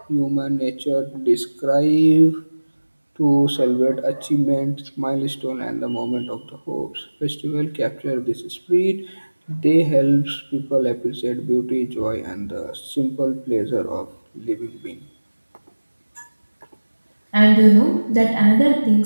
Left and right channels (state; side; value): inverted; both; correlation -1.00